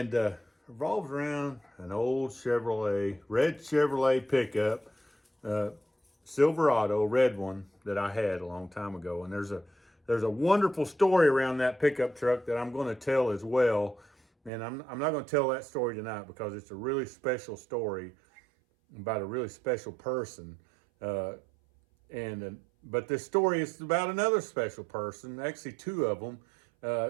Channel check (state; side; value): drops out; left; at 14.5 s